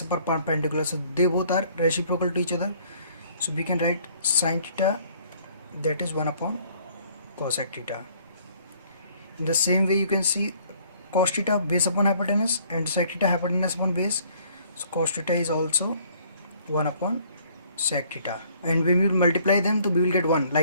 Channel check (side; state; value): both; inverted; correlation -0.60